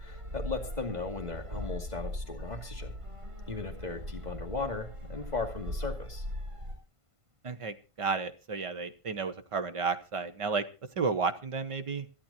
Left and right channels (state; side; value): late; left; 1.5 ms